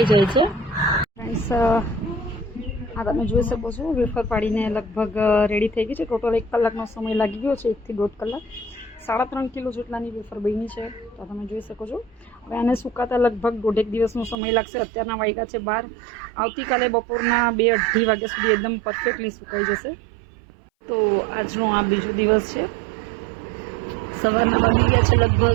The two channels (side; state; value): left; drops out; at 14.4 s